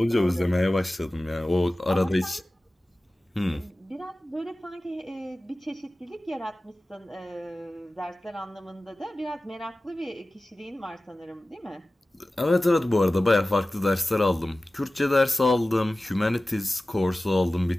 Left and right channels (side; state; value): both; normal; correlation 0.96